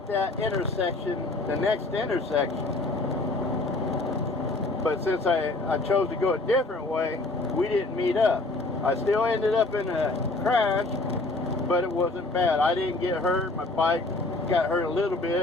that intersection, the next intersection. But since I chose to go a different way, we didn't meet up. I still ended up in a crash, but it wasn't bad. I didn't get hurt. My bike got hurt a little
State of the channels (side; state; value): right; quieter; 3.0 dB